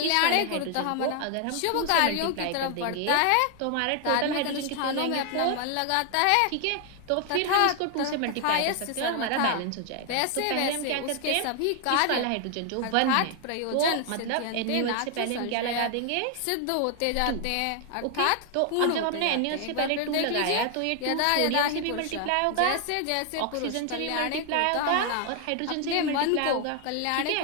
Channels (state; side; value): different; both; correlation 0.00